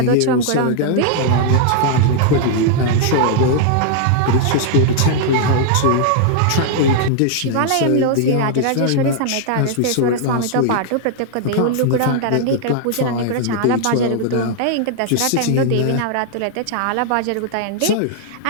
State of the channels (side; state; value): both; different; correlation 0.00